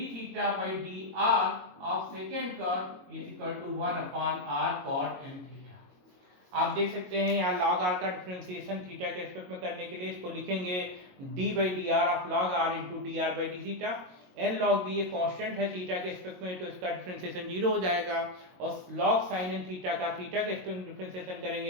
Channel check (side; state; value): left; late; 22 ms